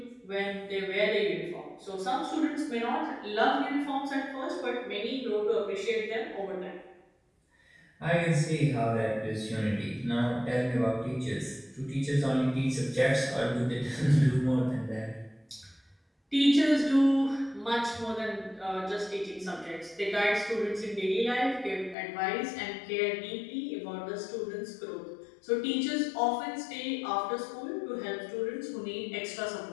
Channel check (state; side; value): drops out; right; at 22.0 s